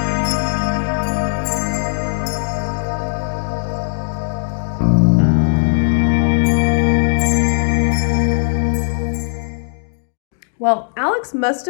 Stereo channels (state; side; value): silent; right; digital silence